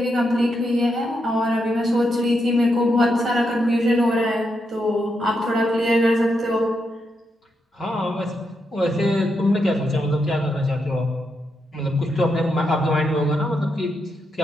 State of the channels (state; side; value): normal; both; correlation 0.82